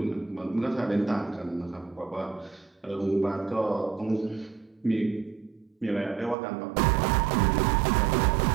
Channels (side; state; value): left; drops out; at 6.4 s